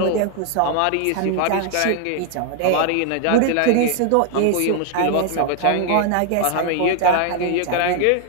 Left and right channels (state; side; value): different; both; correlation 0.00